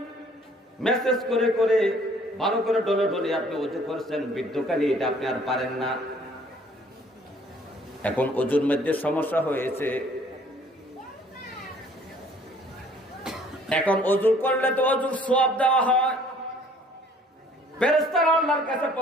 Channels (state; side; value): normal; both; correlation 0.57